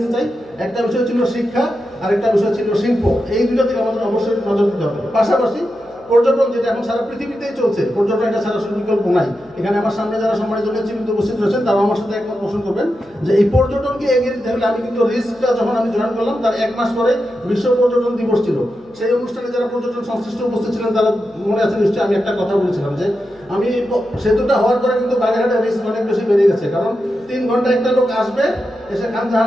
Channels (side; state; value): right; noise; hum, 30 dB below the sound